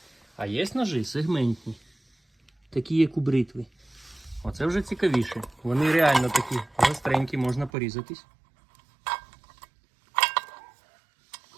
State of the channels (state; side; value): drops out; left; at 7.7 s